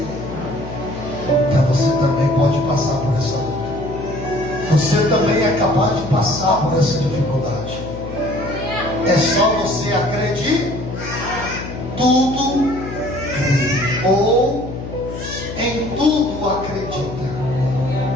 Então você também pode passar por essa luta. Você também é capaz de passar por essa dificuldade. É só você acreditar. Tudo ou em tudo acredita.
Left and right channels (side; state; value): left; noise; hum, 9 dB below the sound